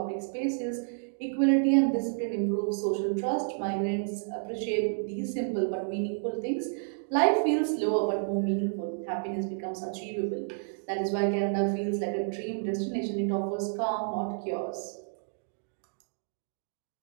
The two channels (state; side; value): silent; left; digital silence